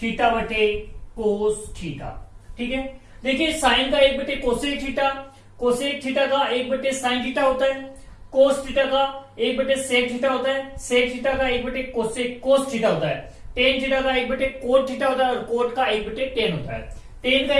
थीटा बटे कोस थीटा। ठीक है, देखिए साइन का 1/कोसेक थीटा, कोसेक थीटा का 1/साइन थीटा होता है, कोस थीटा का 1/सेक थीटा होता है, सेक थीटा का 1/कोसेक कोस थीटा होता है, टेन थीटा का 1/कोट थीटा होता है, और कोट का 1/टेन होता है। टेन का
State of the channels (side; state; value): both; identical; correlation 1.00